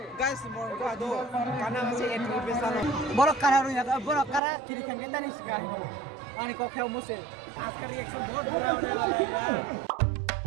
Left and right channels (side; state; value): left; drops out; at 4.4 s